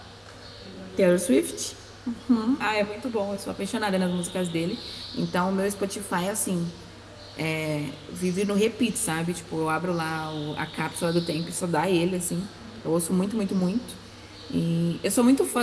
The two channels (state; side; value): identical; both; correlation 1.00